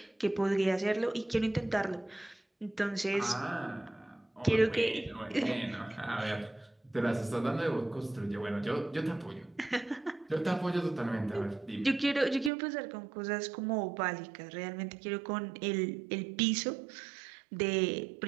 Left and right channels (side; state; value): left; drops out; at 12.5 s